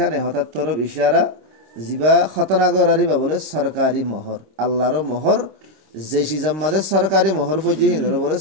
হঠাৎ তরফ ইশারা জিবা খতনা গরারিবা বলে সরকারি মোহর আল্লাহর মোহর যে সিজাম্মাদে সরকারি মোহর ফজি হিন্দর বলে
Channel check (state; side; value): late; left; 26 ms